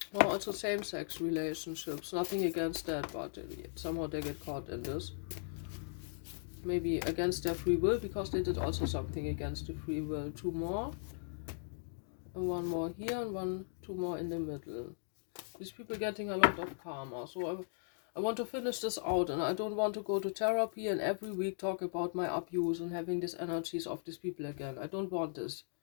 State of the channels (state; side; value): silent; right; digital silence